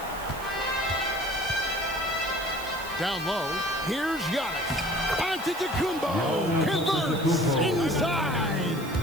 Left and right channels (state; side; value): noise; right; hiss, 16 dB below the sound